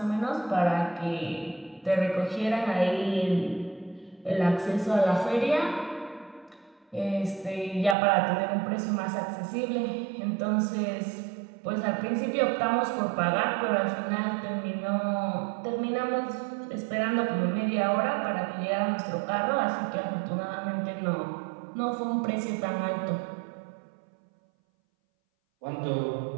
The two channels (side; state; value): left; drops out; at 8.0 s